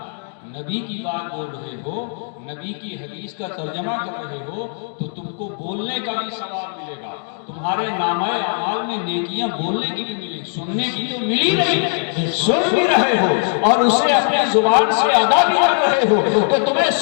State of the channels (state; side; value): silent; right; 61 dB below the other